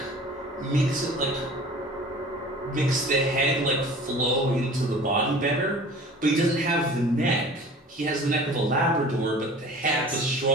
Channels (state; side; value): normal; both; correlation 0.43